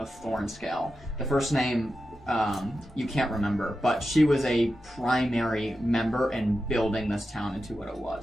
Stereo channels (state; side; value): normal; both; correlation 0.91